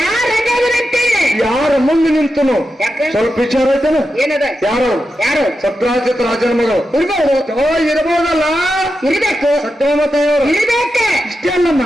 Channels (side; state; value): both; normal; correlation 0.89